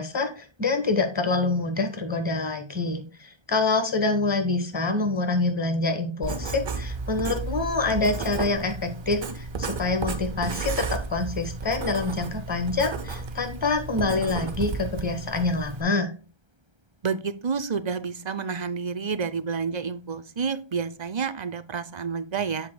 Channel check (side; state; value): left; late; 1.3 ms